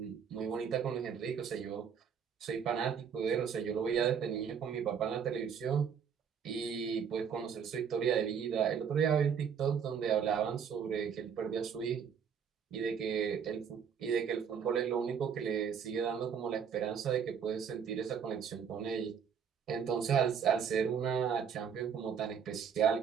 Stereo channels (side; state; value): left; quieter; 7.3 dB